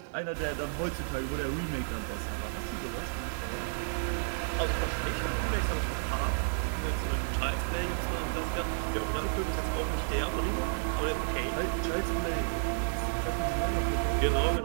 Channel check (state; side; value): silent; left; 57 dB below the other